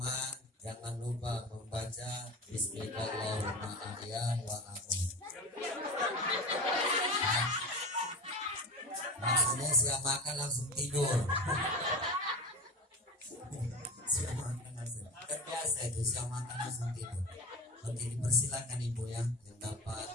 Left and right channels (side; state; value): both; normal; correlation 0.29